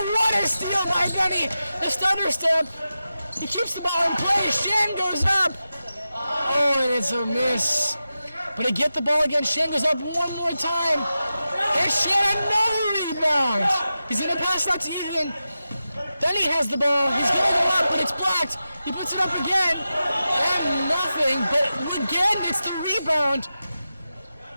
what a steal by Benny. The stutter step. He keeps the ball in play. Shan goes up. Oh, and it's a miss. But he get the ball again. Shan goes up one more time. And Shan another rebound. He's going to pass that to Ethan. Then he has the ball. He's going to go up, but it's blocked. He puts it up again. And nothing. But again, it's the rebound.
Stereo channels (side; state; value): both; inverted; correlation -0.92